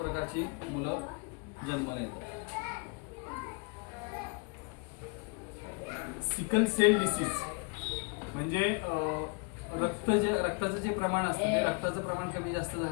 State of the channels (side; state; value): right; quieter; 32.2 dB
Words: मुलं जन्माला येतात. सिकल सेल डिसीज, म्हणजे रक्ताचं जे प्रमाण असतं ते रक्ताचं प्रमाण कमी जास्त